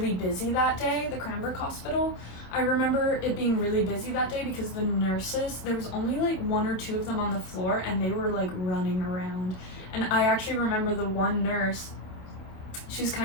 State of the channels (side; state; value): right; late; 27 ms